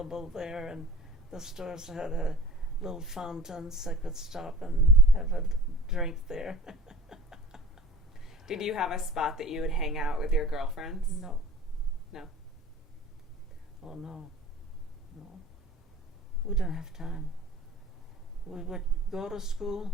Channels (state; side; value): normal; both; correlation 0.44